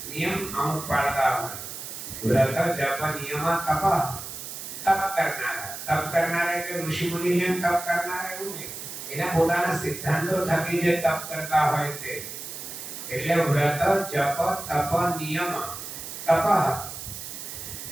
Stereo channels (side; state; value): right; noise; hiss, 9 dB below the sound